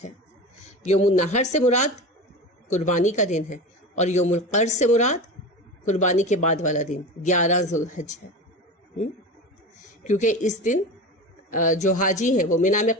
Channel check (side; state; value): both; normal; correlation 0.28